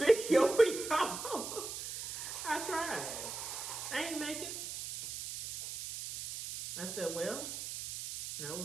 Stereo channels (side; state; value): right; noise; hiss, 7 dB below the sound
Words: for y'all. I tried. I ain't make it. I said, well, that